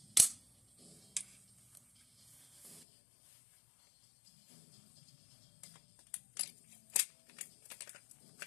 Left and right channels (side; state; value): right; drops out; at 2.9 s